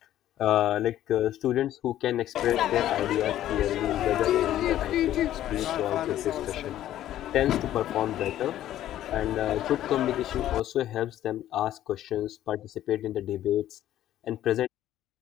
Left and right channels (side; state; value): right; quieter; 12.6 dB